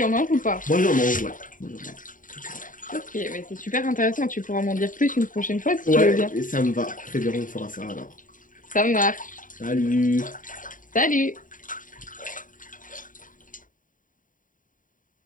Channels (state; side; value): late; right; 0.39 ms